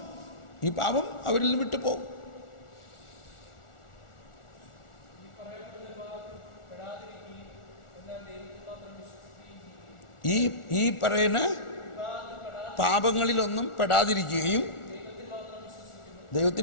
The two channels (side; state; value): right; late; 1.4 ms